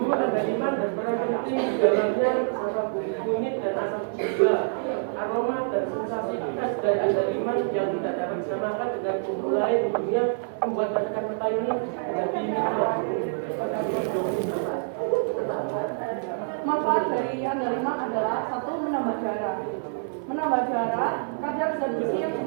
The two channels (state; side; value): silent; left; 61 dB below the other